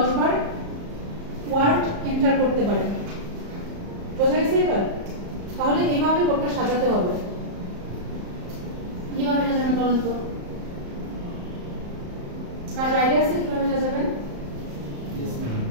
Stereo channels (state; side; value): late; left; 34 ms